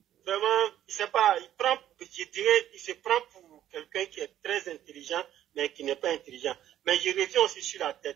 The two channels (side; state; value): left; quieter; 11.7 dB